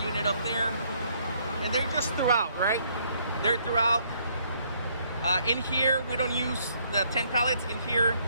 unit up there, and they're just throughout, right? They're throughout. In here, we don't use the 10 pallets. In here,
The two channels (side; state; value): both; inverted; correlation -0.68